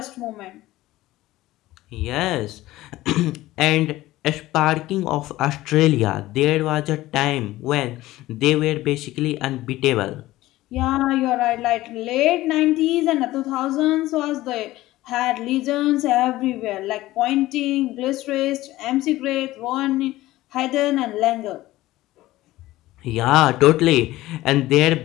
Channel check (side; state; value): right; quieter; 16.8 dB